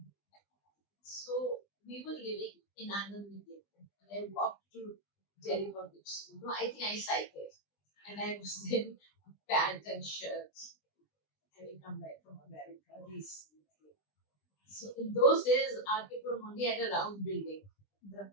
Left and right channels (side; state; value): right; late; 20 ms